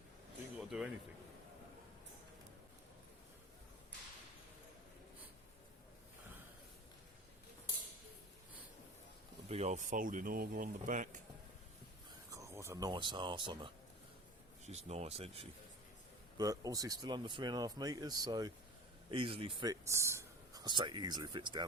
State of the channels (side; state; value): both; normal; correlation 0.36